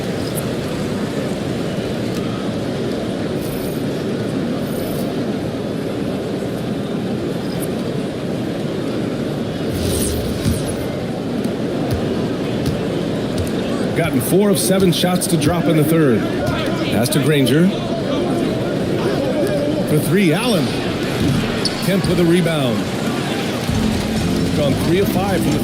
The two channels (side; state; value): both; identical; correlation 1.00